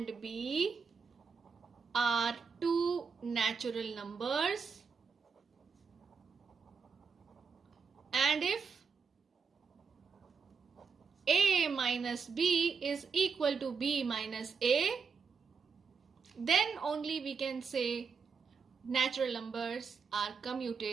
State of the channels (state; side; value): quieter; left; 5.7 dB